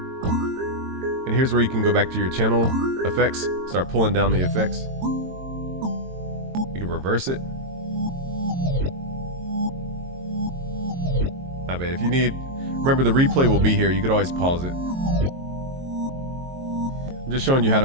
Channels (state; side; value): late; left; 22 ms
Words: And here's where you can go back to your channel effects, start pulling down the effects. You can reverse it. Not bad. If you need, remember the replay will be here. You could always pause it. I'm just showing you how to